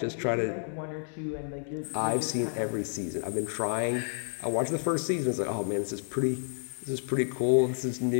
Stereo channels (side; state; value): right; silent; 58 dB below the other